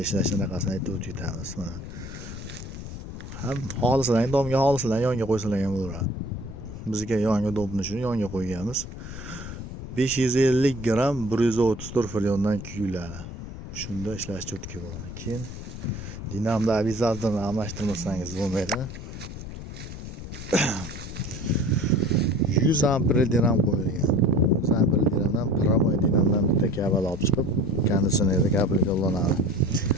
ishlashini qasini aytib o'tamiz mana. Ham xohlasalar domga xohlasalar yonga qo'ysalar ham bo'laveradi. Bizga yonga domni shuni yonga qo'yganmiz. 550 gram 134 fryondan kuyiladi. Shunda ishlash cho'tki bo'ladi. Keyin dinamda avizatorni almashtirmasangiz bo'lmaydi. 100 ampere dinam qo'yilgan. 100 ampere dinamdan pravoy dinamdan bitta kabel olib chiqib, konditsionerda kabelga ulanadi.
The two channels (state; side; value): noise; left; rumble, 10 dB below the sound